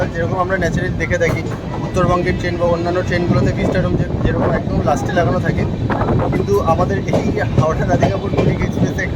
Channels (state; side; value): identical; both; correlation 1.00